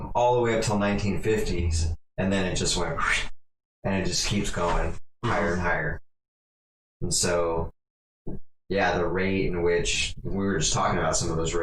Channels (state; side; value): identical; both; correlation 1.00